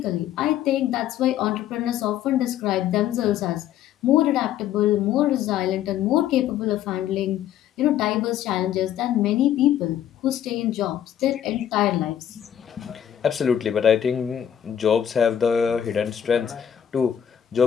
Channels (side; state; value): right; quieter; 10.1 dB